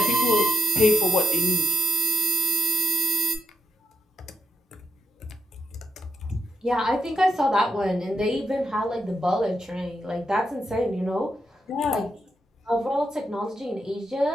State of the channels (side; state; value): both; normal; correlation 0.82